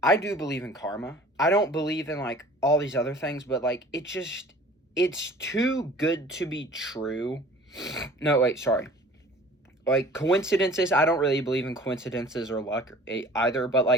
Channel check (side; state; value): both; normal; correlation 0.47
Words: I do believe in karma. I don't believe in, like, all these other things, but, like, it's too good to be true. No, wait, sorry. Like, coincidences, I don't really believe in coincidences or luck either, but,